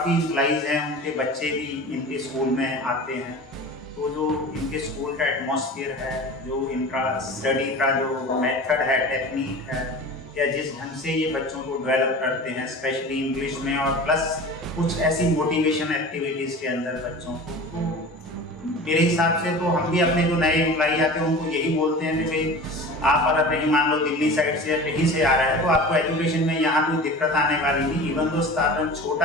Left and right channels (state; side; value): normal; both; correlation 0.36